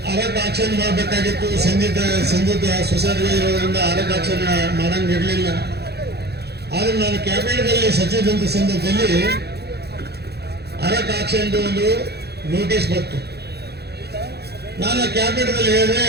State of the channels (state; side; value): late; left; 0.48 ms